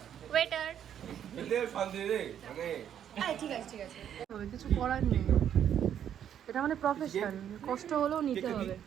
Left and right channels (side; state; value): left; quieter; 9.6 dB